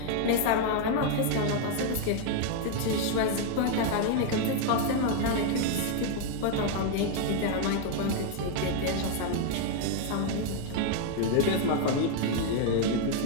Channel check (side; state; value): both; different; correlation 0.00